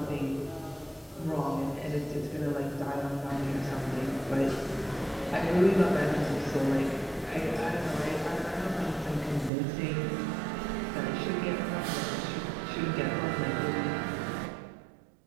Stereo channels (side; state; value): left; drops out; at 9.5 s